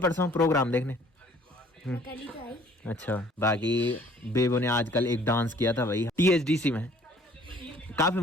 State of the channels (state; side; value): normal; both; correlation 0.56